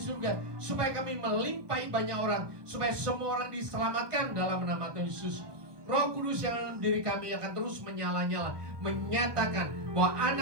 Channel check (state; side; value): late; left; 1.2 ms